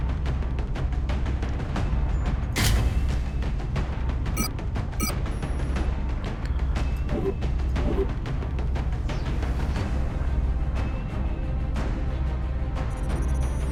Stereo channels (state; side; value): identical; both; correlation 1.00